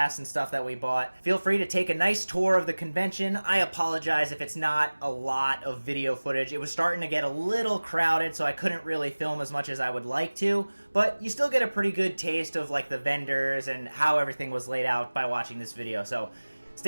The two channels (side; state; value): both; inverted; correlation -1.00